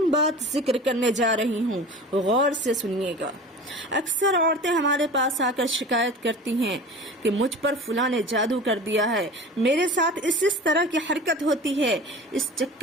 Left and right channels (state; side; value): normal; both; correlation 0.37